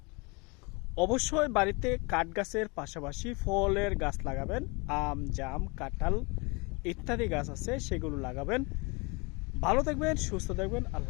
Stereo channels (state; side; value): quieter; right; 28.9 dB